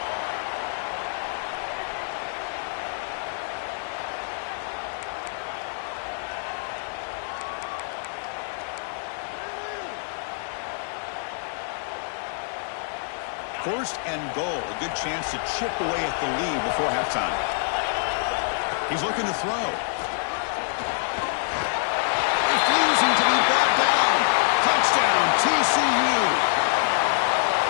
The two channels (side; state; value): right; silent; digital silence